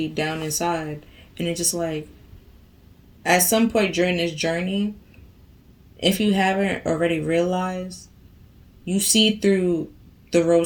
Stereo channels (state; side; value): identical; both; correlation 1.00